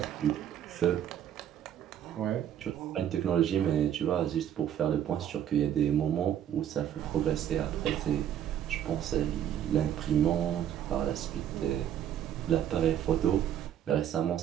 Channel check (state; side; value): quieter; left; 10.3 dB